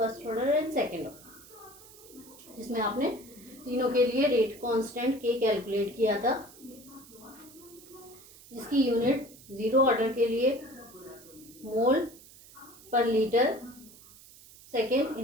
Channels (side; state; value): right; noise; hiss, 21 dB below the sound